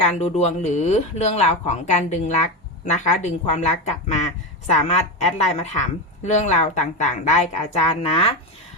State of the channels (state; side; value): normal; both; correlation 0.15